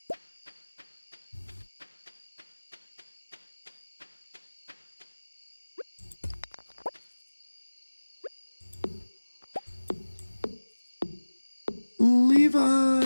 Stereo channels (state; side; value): inverted; both; correlation -1.00